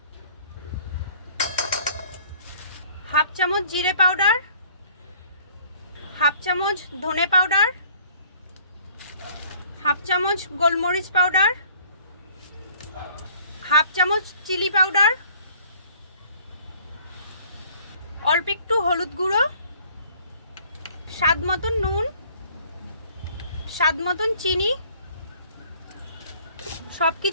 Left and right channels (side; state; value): both; inverted; correlation -0.55